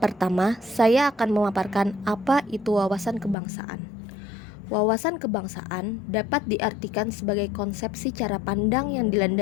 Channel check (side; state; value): right; drops out; at 3.4 s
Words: Pertama, saya akan memaparkan apa itu wawasan kebangsaan. Wawasan kebangsaan dapat diartikan sebagai konsepsi cara pandang yang